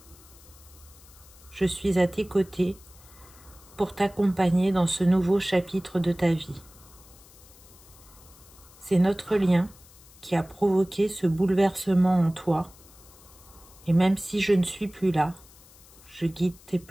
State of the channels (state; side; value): noise; left; hiss, 24 dB below the sound